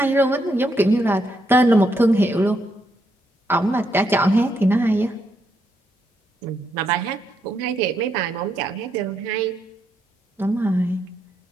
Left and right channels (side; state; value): both; normal; correlation 0.78